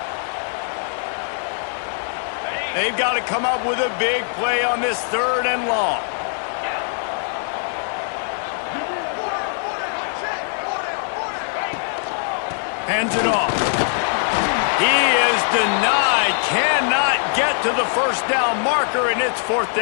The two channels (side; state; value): right; silent; 65 dB below the other